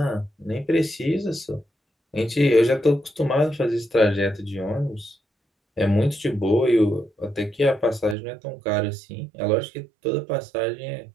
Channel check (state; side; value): drops out; left; at 8.2 s